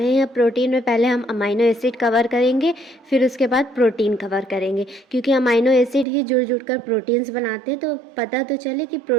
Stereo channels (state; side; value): drops out; left; at 6.1 s